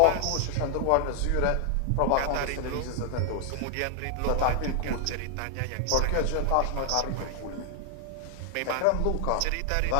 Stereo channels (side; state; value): both; different; correlation 0.00